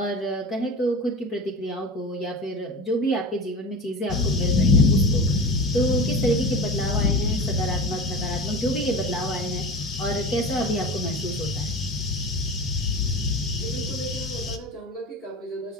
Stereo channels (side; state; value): both; normal; correlation 0.31